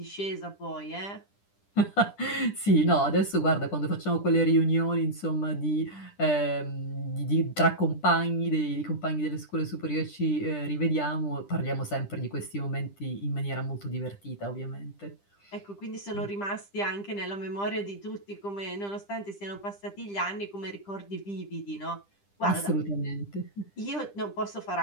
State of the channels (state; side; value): late; right; 10 ms